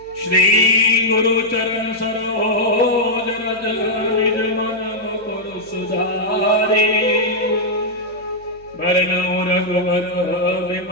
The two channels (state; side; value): noise; right; hum, 25 dB below the sound